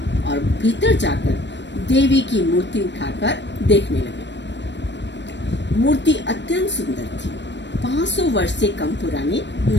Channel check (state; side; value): late; right; 0.52 ms